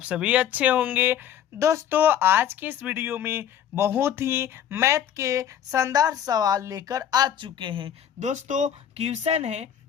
सभी अच्छे होंगे। दोस्तों, आज की इस वीडियो में बहुत ही मैथ के शानदार सवाल लेकर आ चुके हैं। दोस्तों, क्वेश्चन है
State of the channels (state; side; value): quieter; right; 9.7 dB